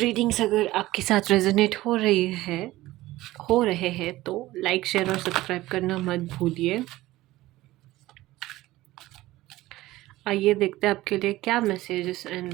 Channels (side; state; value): left; quieter; 17.2 dB